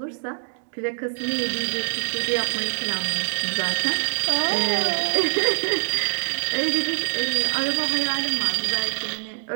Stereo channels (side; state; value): left; silent; digital silence